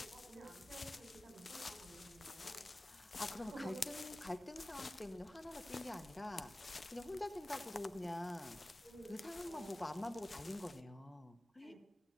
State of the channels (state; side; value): normal; both; correlation 0.97